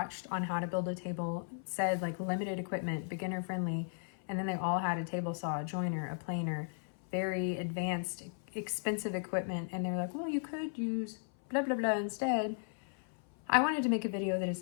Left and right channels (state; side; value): silent; right; 54 dB below the other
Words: on how to build a table said like limited equipment, beginner friendly, and then they all had a table saw, a joiner, a planer, very advanced, expensive equipment, and they're like, well, you could use blah, blah, blah instead. I wanted to make a video that